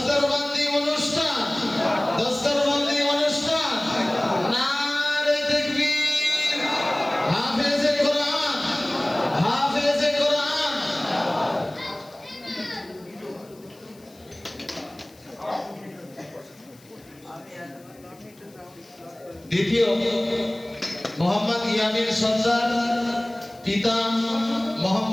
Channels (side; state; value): left; noise; hiss, 27 dB below the sound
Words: অনুষ্ঠান, দস্তরবন্দি অনুষ্ঠান। নারে তাকবীর। হাফেজে কোরআন, হাফেজে কোরআন। দ্বিতীয় মোহাম্মদ ইয়ামিন সর্দার, পিতা